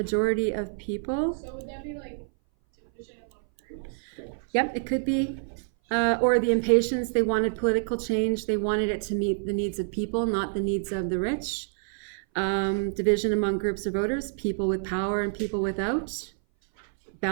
of people. so would that be like division among groups? Yep, it could be. Or the impatience, they wanted political change. They wanted it to meet the needs of people, not the needs of the rich. Division among groups of voters, people with power and people without.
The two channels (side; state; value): left; silent; 59 dB below the other